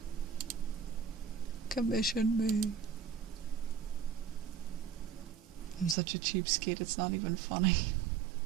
Commission me. I'm such a cheapskate, it's not even funny.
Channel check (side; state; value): left; drops out; at 6.0 s